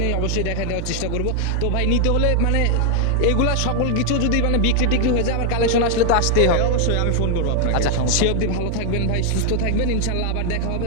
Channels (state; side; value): different; both; correlation 0.00